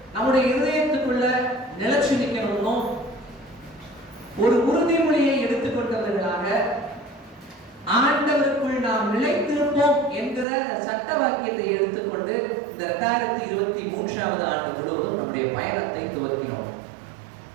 நம்முடைய இதயத்துக்குள்ள நிலைச்சு நிற்கணும்னோ, ஒரு உறுதிமொழியை எடுத்துக்கொண்டவர்களாக ஆண்டவருக்குள் நாம் நிலைத்திருப்போம் என்கிற சட்ட வாக்கியத்தை எடுத்துக்கொண்டு இந்த 2023 ஆண்டு முழுவதும் நம்முடைய பயணத்தை துவக்கினோம்.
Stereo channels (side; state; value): left; drops out; at 10.5 s